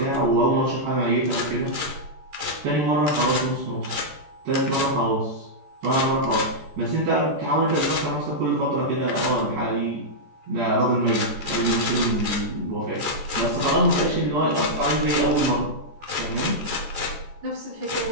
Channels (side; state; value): left; late; 14 ms